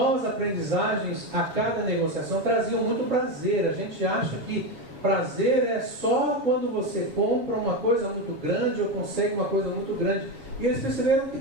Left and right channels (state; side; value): late; left; 7.6 ms